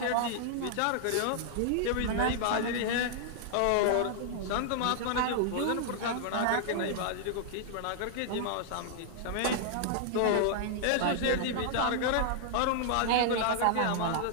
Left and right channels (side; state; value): both; different; correlation -0.01